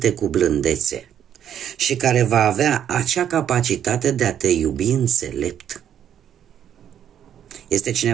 cu blândețe și care va avea acea capacitate de a te iubi înțelept. Este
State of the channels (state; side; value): quieter; left; 9.7 dB